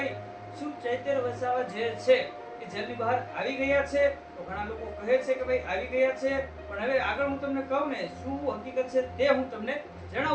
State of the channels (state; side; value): identical; both; correlation 1.00